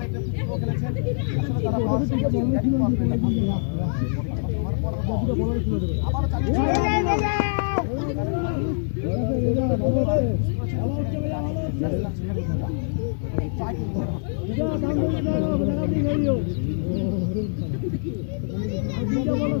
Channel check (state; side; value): silent; right; 62 dB below the other